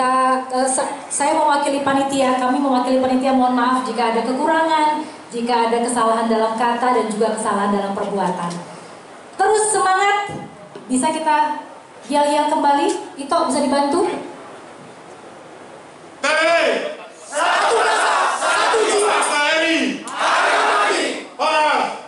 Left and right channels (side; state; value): both; identical; correlation 1.00